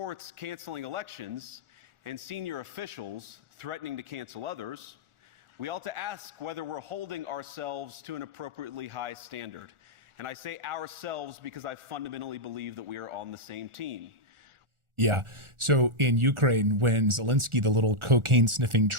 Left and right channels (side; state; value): left; late; 1.4 ms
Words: canceling elections and senior officials threatening to cancel others, we ought to ask whether we're holding ourselves to an appropriately high standard. And I say ourselves because I fundamentally believe that we are on the same team. Yeah. So in Ukraine, when Zelensky, the little cocaine-sniffing